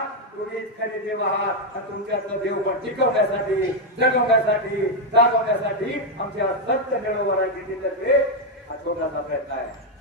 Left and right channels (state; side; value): normal; both; correlation 0.02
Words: तुम्हीच खरे देव आहात आणि तुमच्यातलं देव पण टिकवण्यासाठी, जगवण्यासाठी, जागवण्यासाठी आमच्या सत्य मिळवणाऱ्या जिल्ह्यातर्फे हा छोटासा प्रयत्न आहे.